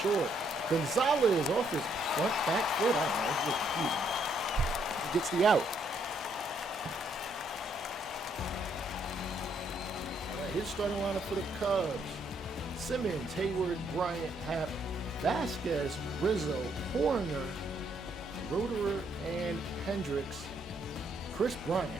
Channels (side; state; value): both; normal; correlation 0.72